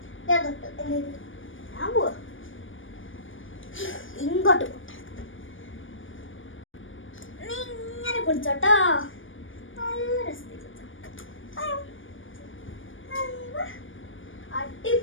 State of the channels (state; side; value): late; right; 0.57 ms